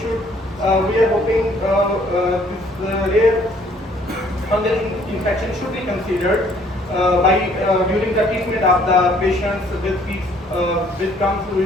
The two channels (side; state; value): both; normal; correlation 0.61